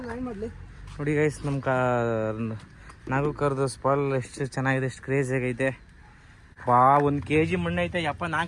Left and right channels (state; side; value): identical; both; correlation 1.00